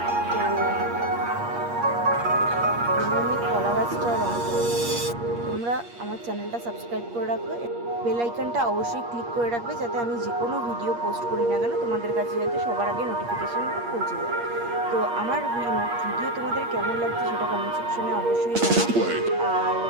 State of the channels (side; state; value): left; late; 8.5 ms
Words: তো আমি কলা গাছটা রং করে নিচ্ছি। তোমরা আমার চ্যানেলটা সাবস্ক্রাইব করে রাখবে, বেল আইকনটা অবশ্যই ক্লিক করে রাখবে, যাতে আমি যে কোনো ভিডিও পোস্ট করি না কেন তোমাদের কাছে যাতে সবার আগে নোটিফিকেশানটা পৌঁছে যায়। তো আমার ভিডিও তোমাদের কেমন লাগছে সেটা কমেন্ট সেকশনে অবশ্যই জানাও। আর